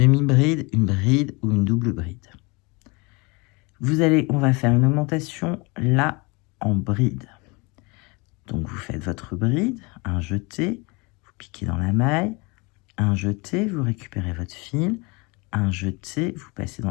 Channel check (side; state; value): right; quieter; 27.5 dB